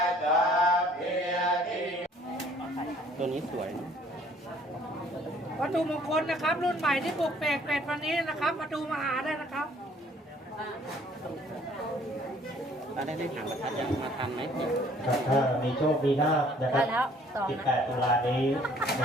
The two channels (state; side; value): normal; both; correlation 0.58